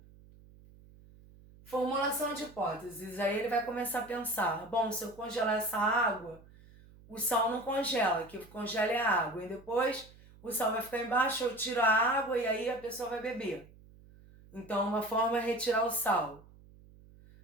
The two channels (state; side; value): noise; right; hum, 23 dB below the sound